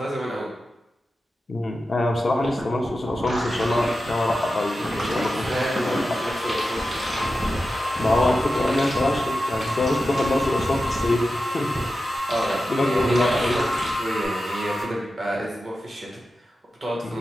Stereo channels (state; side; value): normal; both; correlation 0.92